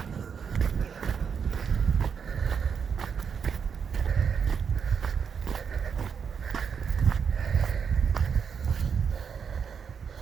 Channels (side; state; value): left; quieter; 6.7 dB